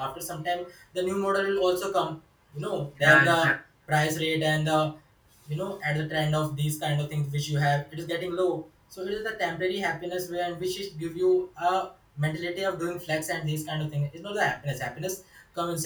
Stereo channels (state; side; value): identical; both; correlation 1.00